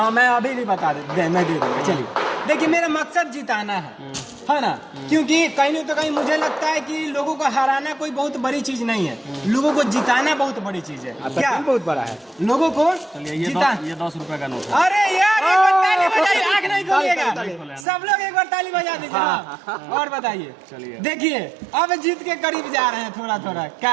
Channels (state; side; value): drops out; left; at 17.9 s